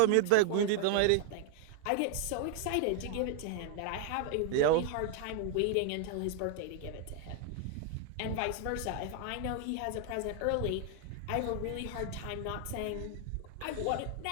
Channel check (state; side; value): different; both; correlation 0.00